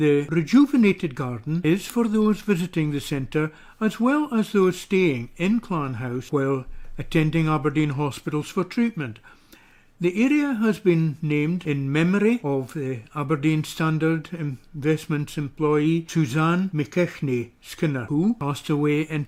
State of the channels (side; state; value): both; identical; correlation 1.00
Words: rejuvenated garden is for those visiting the centre as well as those staying in Clan House while attending Aberdeen Hospitals for treatment. The area has been named in memory of the Aberdeen Standard Investments employee Suzanne McKechte Skinner, who passed away in